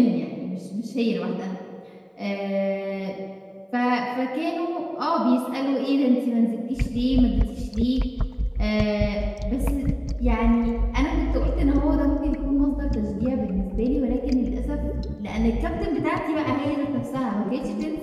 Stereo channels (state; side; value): identical; both; correlation 1.00